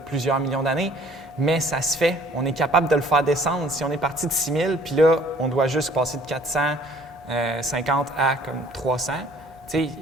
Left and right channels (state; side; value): normal; both; correlation 0.56